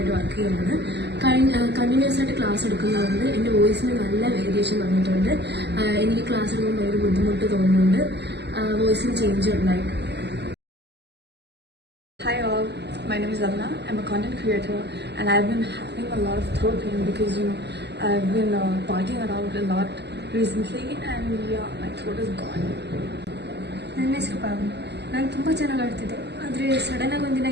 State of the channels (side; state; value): left; late; 0.49 ms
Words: വർക്ക് ചെയ്യുകയാണ്. കണ്ടിന്യൂസ് ആയിട്ട് ക്ലാസ് എടുക്കുന്നതുകൊണ്ട് എൻ്റെ വോയിസിന് നല്ല വേരിയേഷൻ വന്നിട്ടുണ്ട്. എനിക്ക് ക്ലാസ് എടുക്കുമ്പോൾ ഭയങ്കര ബുദ്ധിമുട്ട് തോന്നുന്നുണ്ട്. വോയിസിന് ചേഞ്ച് ഉണ്ടായി. Hi all, my name is Avna. I'm a content creator and I've been having a lot of throat pain because I've been partying around a lot recently and yeah, my throat is gone. ನನ್ನ ಹೆಸರು ಪಾವನಿ. ನಾನು ತುಂಬ ಚೆನ್ನಾಗಿ ಆಡ್ತಿದ್ದೆ, ಆದರೆ ಸಡನ್ನಾಗಿ ಒಂದಿನ